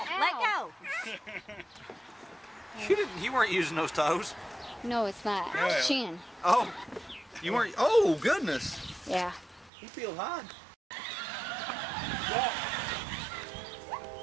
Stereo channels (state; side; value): drops out; left; at 9.7 s